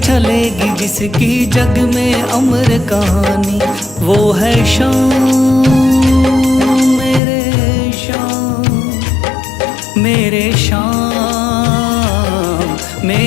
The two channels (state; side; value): drops out; right; at 7.2 s